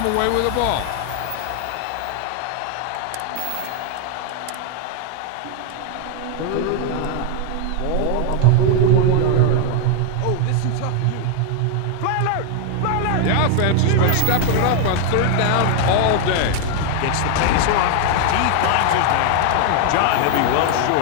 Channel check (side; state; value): both; different; correlation 0.00